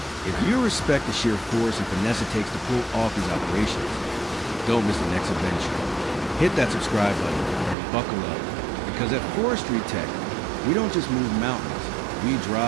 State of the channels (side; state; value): left; drops out; at 7.8 s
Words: if you respect the sheer force and finesse it takes to pull off these operations, don't miss the next adventure. Hit that subscribe button and buckle up, because at Forestry Tech, we don't just move mountains, We